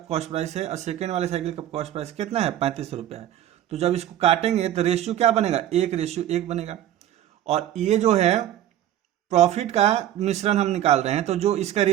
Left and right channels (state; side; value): quieter; left; 12.1 dB